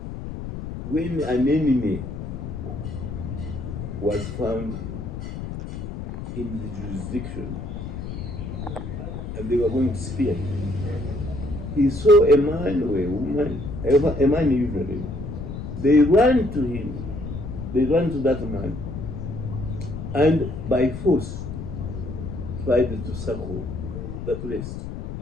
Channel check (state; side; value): noise; left; rumble, 7 dB below the sound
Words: when an enemy was found in the jurisdiction and they were going to spear him, he saw a man or a woman, a man usually, they ran to him, they ran to that man, and by force tried to circle the place.